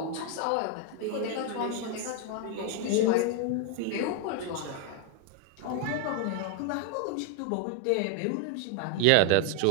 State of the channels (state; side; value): different; both; correlation 0.01